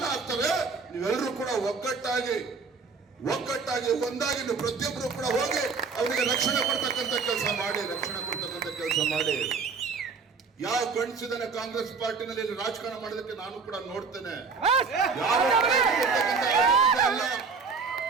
ಆಗ್ತದೆ, ನೀವೆಲ್ಲರೂ ಕೂಡ ಒಗ್ಗಟ್ಟಾಗಿ ಒಂದಾಗಿ ನೀವು ಪ್ರತಿಯೊಬ್ಬರು ಕೂಡ ಹೋಗಿ ಅವರಿಗೆ ರಕ್ಷಣೆ ಕೊಡ್ತಕ್ಕಂಥ ಕೆಲಸ ಮಾಡಿ. ಯಾವ ಗಂಡಸಿದನೆ ಕಾಂಗ್ರೆಸ್ ಪಾರ್ಟಿನಲ್ಲಿ ಇಲ್ಲಿ ರಾಜಕಾರಣ ಮಾಡೋದಕ್ಕೆ ನಾನು ಕೂಡ ನೋಡ್ತೇನೆ. ಅಲ್ಲ,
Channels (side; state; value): left; quieter; 5.0 dB